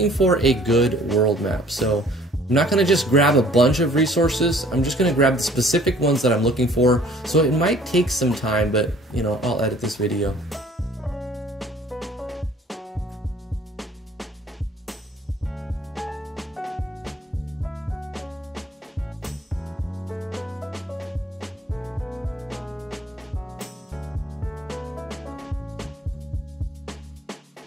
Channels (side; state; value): both; normal; correlation 0.55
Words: for a good world map. So I'm not going to just grab a bunch of resources. I'm just going to grab the specific ones that I'm looking for. So it might take some time, but you know, I'll edit this video.